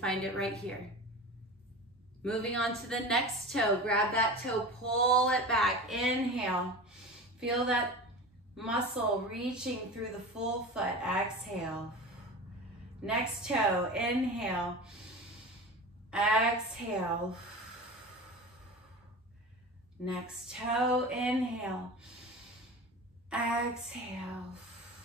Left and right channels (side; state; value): both; normal; correlation 0.32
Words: it right here. Moving on to the next toe. Grab that toe, pull it back. Inhale. Feel that muscle reaching through the full foot. Exhale. Next toe. Inhale. Exhale. Next toe. Inhale. Exhale.